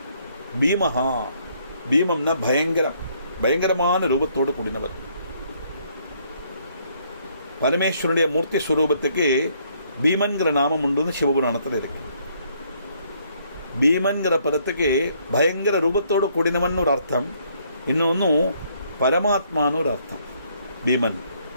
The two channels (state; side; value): inverted; both; correlation -0.68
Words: பீமஹா, பீமம்னா பயங்கரம், பயங்கரமான ரூபத்தோடு கூடினவர். பரமேஸ்வரனுடைய மூர்த்தி ஸ்வரூபத்துக்கு பீமன்கிற நாமம் உண்டு, சிவபுராணத்தில் இருக்கு. பீமன்கிற பதத்துக்கு பயங்கர ரூபத்தோடு கூடினவன் ஒரு அர்த்தம், இன்னொன்னு பரமாத்மான்னு ஒரு அர்த்தம். பீமன்